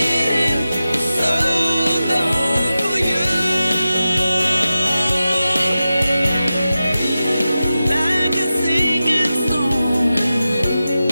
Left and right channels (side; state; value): both; inverted; correlation -0.93